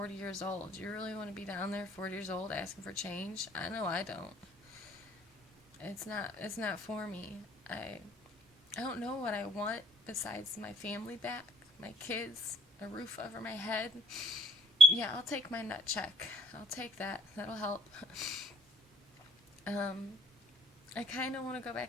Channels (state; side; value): normal; both; correlation 0.57